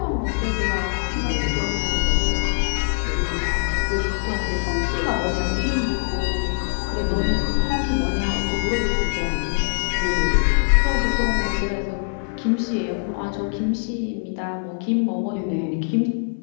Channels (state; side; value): silent; right; digital silence